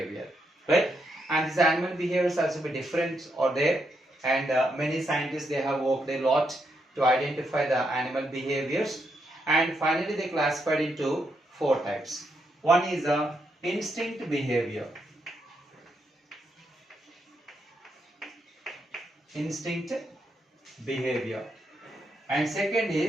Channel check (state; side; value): normal; both; correlation 0.80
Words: right? And this animal behavior is also be different or there, and many scientists they have worked a lot to identify the animal behaviors, and finally they classified into four types. One is a instinct behavior. Instinct behavior. And second